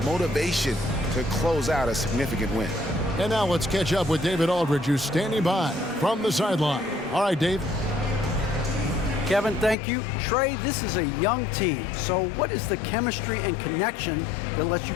motivation to close out a significant win. And now let's catch up with David Aldridge, who's standing by from the sideline. All right, Dave. Kevin, thank you. Trey, this is a young team. So what is the chemistry and connection that lets you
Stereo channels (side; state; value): right; drops out; at 9.8 s